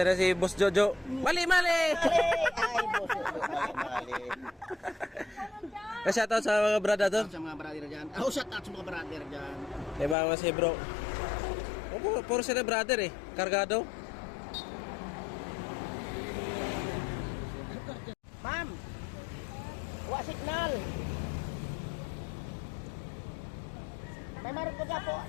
na si Boss Jojo. Mali! Ay, boss. Mali. Shoutout sa mga brother to. Sa mga brother dyan. Oh, shout out sa mga brother dyan. Diba mga si bro? Puro sila brother eh. Kargado. Ma'am! Wa signal! May marot ko dyan po,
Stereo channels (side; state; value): right; drops out; at 10.2 s